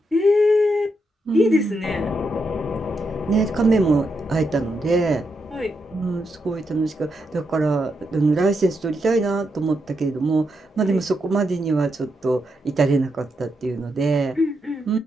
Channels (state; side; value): normal; both; correlation 0.83